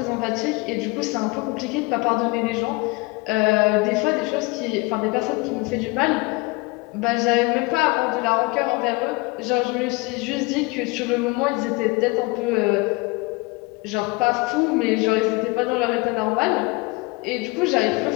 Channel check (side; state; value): right; quieter; 25.2 dB